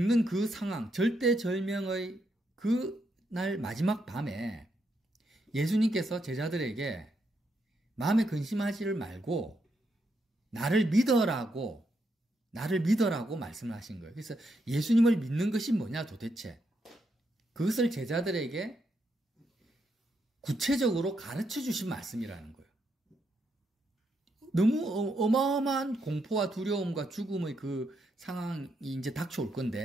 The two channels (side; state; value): both; normal; correlation 0.80